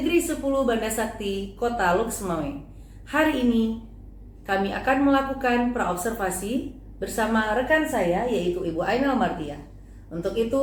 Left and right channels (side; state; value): both; identical; correlation 1.00